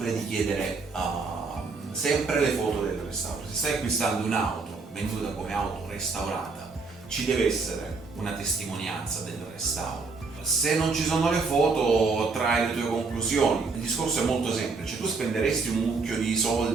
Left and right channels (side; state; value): left; quieter; 4.3 dB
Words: di chiedere sempre le foto del restauro. Se stai acquistando un'auto venduta come auto restaurata, ci deve essere una testimonianza del restauro. Se non ci sono le foto, trai le tue conclusioni. Il discorso è molto semplice: tu spenderesti un mucchio di